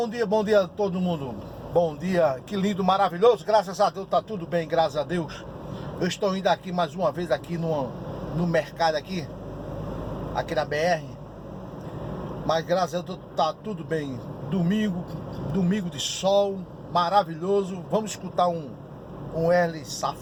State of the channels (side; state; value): both; identical; correlation 1.00